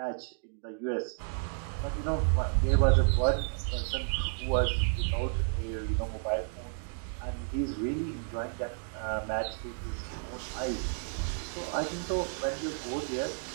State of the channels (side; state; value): left; silent; 57 dB below the other